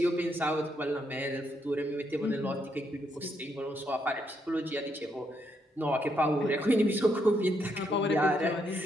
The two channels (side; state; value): both; normal; correlation 0.76